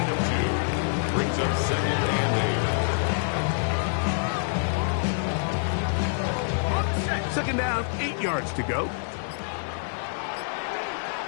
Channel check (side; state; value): right; silent; digital silence